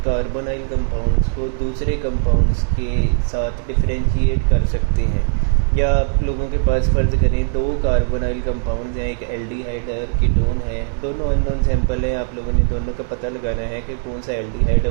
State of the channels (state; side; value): silent; left; 65 dB below the other